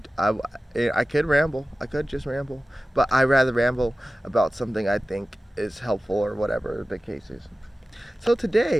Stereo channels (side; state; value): both; normal; correlation 0.96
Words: I could ramble. I could just ramble, but I rather ramble about something I think is helpful or whatever the case is. So